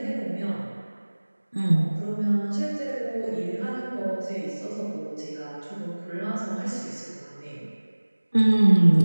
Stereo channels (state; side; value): inverted; both; correlation -1.00